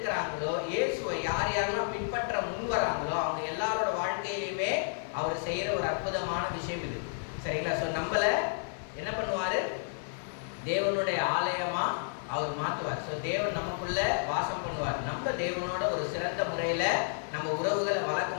இயேசுவை யார் யாரெல்லாம் பின்பற்ற முன் வராங்களோ அவங்க எல்லாரோட வாழ்க்கையிலுமே அவர் செய்யற ஒரு அற்புதமான விஷயம் இது. சரிங்களா? ஸோ நம்மள என்ன பண்ணுவாரு? தேவனுடைய ஆலயமா அவர் மாற்றுவார். ஸோ தேவன் நமக்குள்ள வாசம் பண்ணுவார். நம்ம தேவனோட ஒரு சிறந்த முறையில நம்ம உறவுகளை வளர்க்க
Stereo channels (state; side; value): silent; right; digital silence